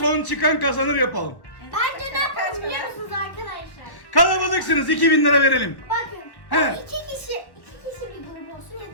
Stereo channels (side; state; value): right; late; 1.3 ms